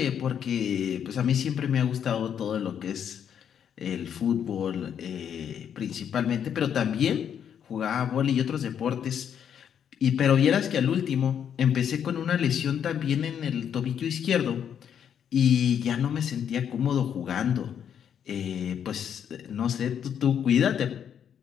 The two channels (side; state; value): right; quieter; 8.6 dB